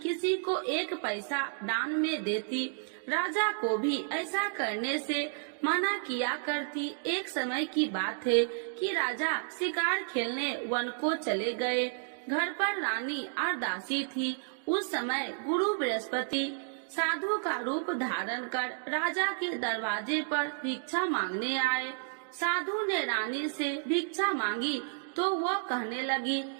किसी को एक पैसा दान में देती। राजा को भी ऐसा करने से मना किया करती। एक समय की बात है कि राजा शिकार खेलने वन को चले गए। घर पर रानी और दासी थी। उस समय गुरु बृहस्पति साधु का रूप धारण कर राजा के दरवाजे पर भिक्षा मांगने आए। साधु ने रानी से भिक्षा मांगी तो वह कहने लगी,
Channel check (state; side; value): silent; left; digital silence